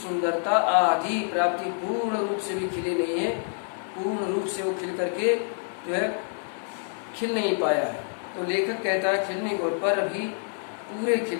आधी प्राप्ति, पूर्ण रूप से भी खिले नहीं है, पूर्ण रूप से वो खिल करके जो है खिल नहीं पाया है। तो लेखक कहता है खिलने को पर अभी पूरे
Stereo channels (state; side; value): silent; right; 60 dB below the other